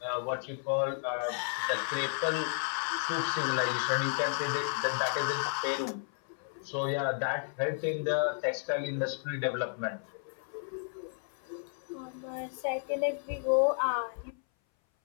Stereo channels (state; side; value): silent; right; 56 dB below the other